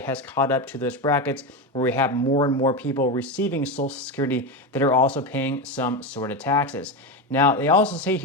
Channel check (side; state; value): both; normal; correlation 0.16